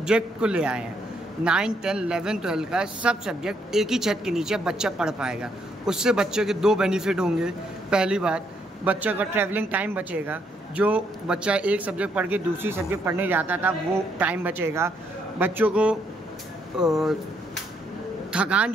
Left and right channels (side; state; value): both; normal; correlation 0.73